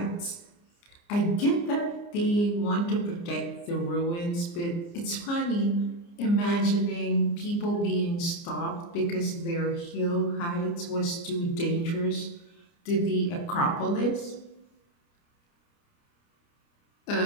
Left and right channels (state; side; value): late; right; 29 ms